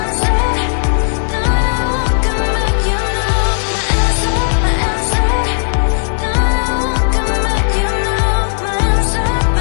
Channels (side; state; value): right; silent; 70 dB below the other